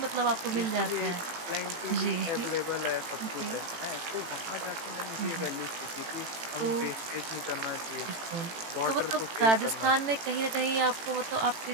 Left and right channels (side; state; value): left; late; 18 ms